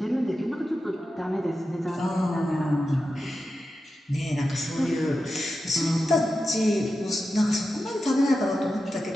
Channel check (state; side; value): normal; both; correlation 0.91